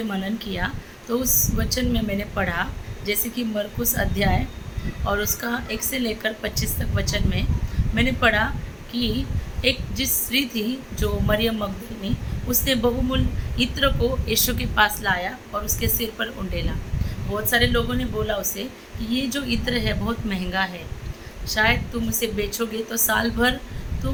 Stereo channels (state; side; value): identical; both; correlation 1.00